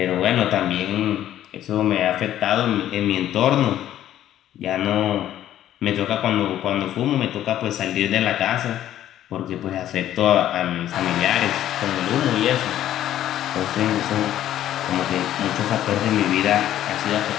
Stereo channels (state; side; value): quieter; right; 12.1 dB